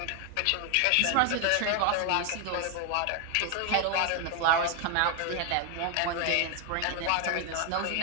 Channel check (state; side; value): different; both; correlation 0.01